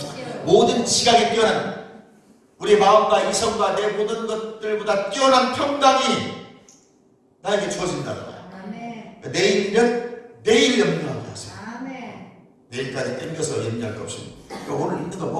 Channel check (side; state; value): both; identical; correlation 1.00